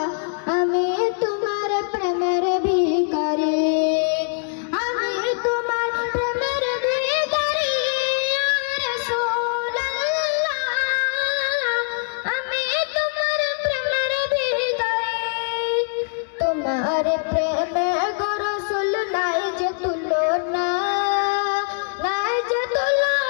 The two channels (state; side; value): silent; right; digital silence